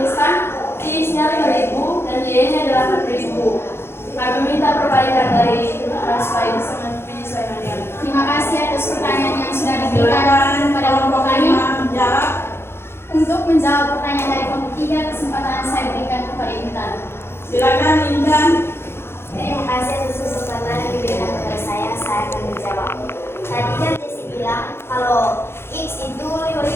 X-nya 5.000 dan Y-nya 8.000. Kami minta perbaikan dari supaya bisa menyesuaikan dengan. Terima kasih atas pertanyaan yang sudah diberikan Silakan kepada kelompok kami. 5 menjawab. Untuk menjawab pertanyaan dari kelompok 3, kesempatan saya berikan kepada Intan. Silakan Intan. Terima kasih atas kesempatan yang diberikan kepada saya akan menjawab. Tadi kan Jessie bilang kalau X itu 5.000.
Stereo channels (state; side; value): late; right; 0.12 ms